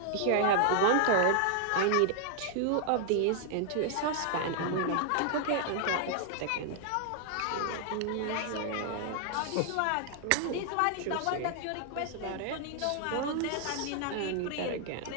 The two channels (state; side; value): different; both; correlation 0.00